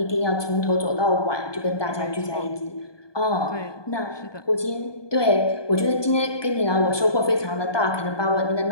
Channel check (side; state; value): right; late; 1.2 ms